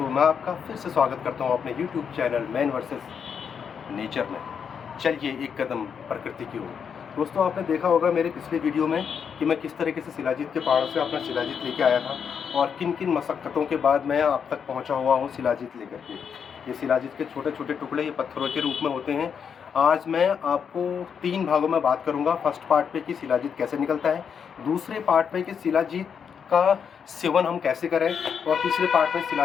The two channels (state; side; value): quieter; right; 7.0 dB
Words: मैं आपका फिर से स्वागत करता हूं अपने YouTube channel man versus nature में। चलिए एक कदम प्रकृति की ओर। दोस्तों, आपने देखा होगा मेरे पिछले वीडियो में कि मैं किस तरीके से शिलाजीत के पहाड़ों से अपना शिलाजीत लेके आया था और किन किन मशक्क़तों के बाद मैं आप तक पहुंचा हुआ हूं शिलाजीत लेकर के। ये शिलाजीत के छोटे छोटे टुकड़े ये पत्थरों के रूप में होते हैं। आज मैं आपको 3 भागों में बात करूँगा। फर्स्ट पार्ट पे कि शिलाजीत कैसे निकलता है, दूसरे पार्ट में कि शिलाजीत का सेवन हम कैसे करें, और तीसरे पार्ट में